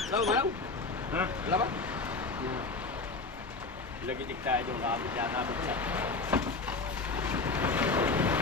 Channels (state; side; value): quieter; right; 3.8 dB